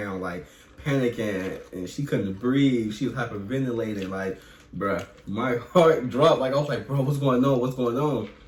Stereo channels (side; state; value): both; identical; correlation 1.00